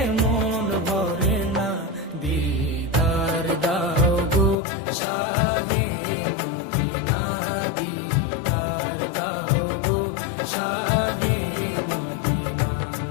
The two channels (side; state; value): right; drops out; at 4.5 s